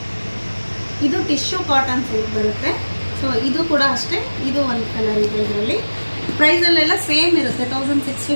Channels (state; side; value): inverted; both; correlation -1.00